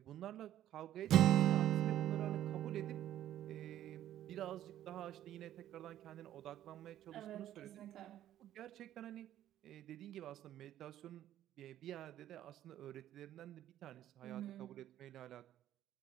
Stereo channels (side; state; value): left; quieter; 12.2 dB